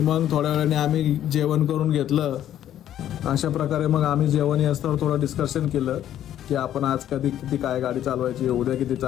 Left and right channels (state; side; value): quieter; right; 11.4 dB